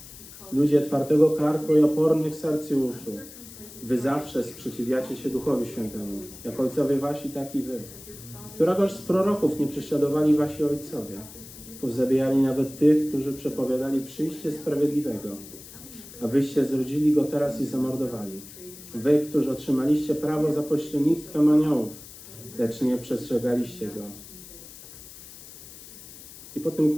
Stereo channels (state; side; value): noise; left; hiss, 17 dB below the sound